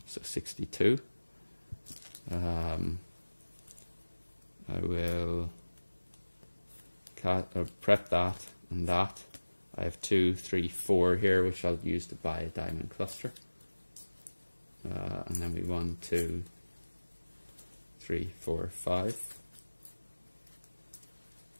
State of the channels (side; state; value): both; inverted; correlation -1.00